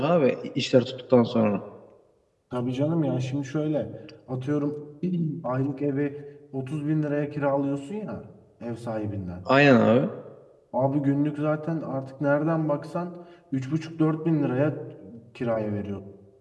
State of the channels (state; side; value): identical; both; correlation 1.00